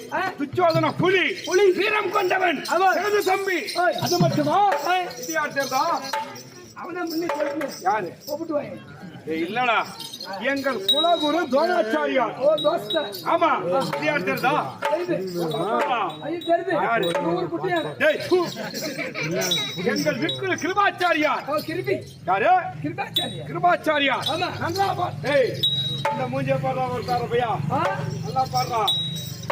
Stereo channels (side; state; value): both; identical; correlation 1.00